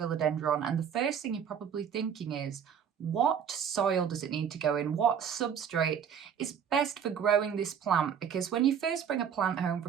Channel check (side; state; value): left; quieter; 7.9 dB